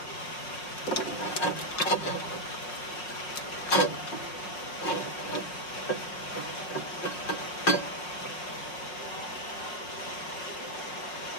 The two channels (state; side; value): late; right; 5.5 ms